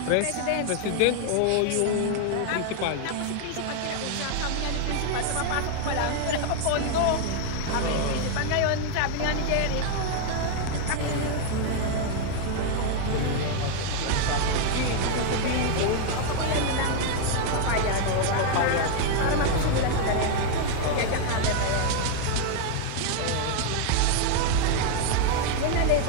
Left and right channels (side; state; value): both; different; correlation 0.00